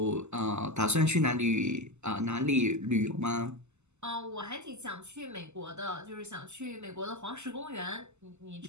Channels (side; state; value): left; late; 0.83 ms